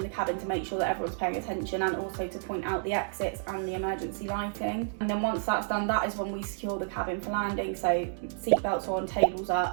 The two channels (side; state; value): left; silent; digital silence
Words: the cabin to make sure that everyone's paying attention, and also to point out the exits and the emergency lighting. And then once that's done, that is when we secure the cabin for landing, so seatbelts on, tables